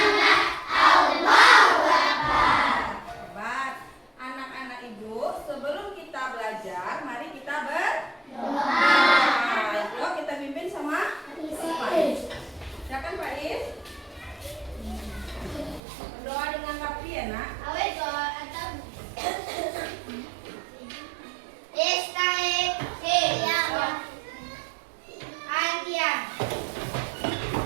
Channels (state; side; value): drops out; left; at 15.8 s